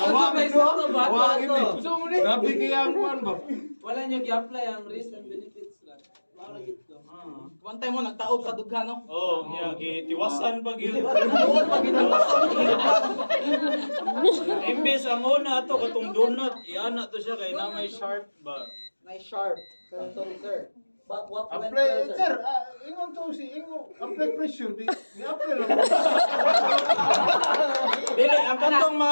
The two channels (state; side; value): inverted; both; correlation -1.00